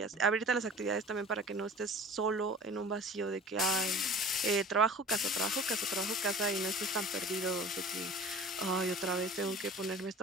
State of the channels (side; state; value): both; normal; correlation 0.42